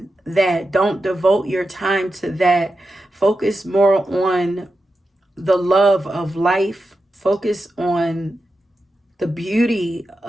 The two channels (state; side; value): normal; both; correlation 0.90